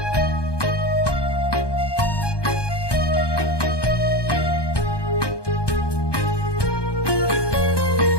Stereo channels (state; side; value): late; right; 1.2 ms